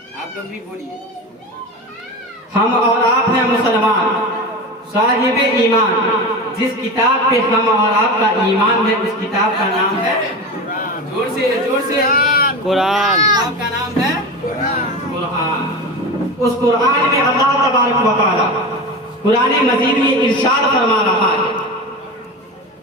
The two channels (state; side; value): normal; both; correlation 0.26